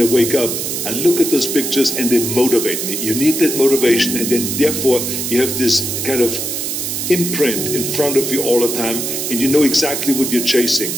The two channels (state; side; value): noise; right; hiss, 3 dB below the sound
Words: wake up, I look at those pictures and they motivate me. You need that motivation, and then therefore you have this kind of imprint in front of you all the time, and you know exactly what you're